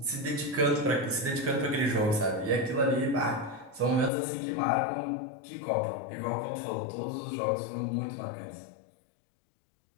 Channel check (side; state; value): right; drops out; at 4.1 s